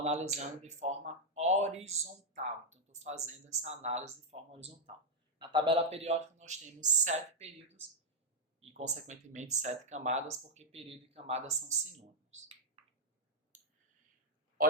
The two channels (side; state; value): both; normal; correlation -0.01